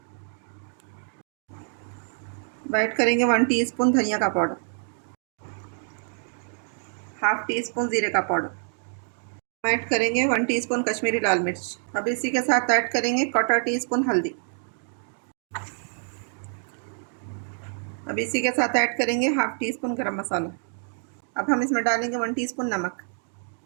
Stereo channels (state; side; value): silent; left; 56 dB below the other